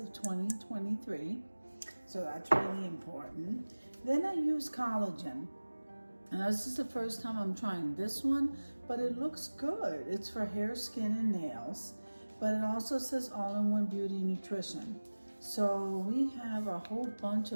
2023, so that's really important. Then I use collagen. Now this is the first time I'm trying this one, but it looks good. It's for hair, skin, and nails, but it also says all-in-one beauty nutrition. So we have a whole bunch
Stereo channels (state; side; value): inverted; both; correlation -1.00